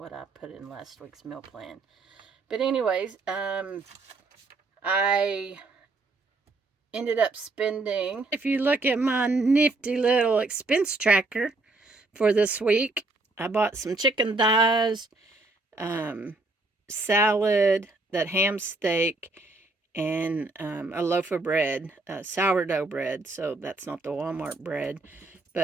I put in last week's meal plan. But anyways, I ended up spending, if you look at my nifty little expense tracker for this week, I bought some chicken thighs, salad, that ham steak, and a loaf of bread, sourdough bread. So that's not the Walmart bread,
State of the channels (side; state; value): left; quieter; 3.2 dB